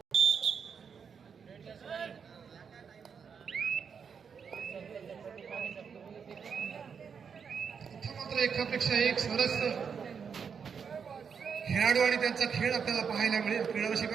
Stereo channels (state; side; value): quieter; left; 6.5 dB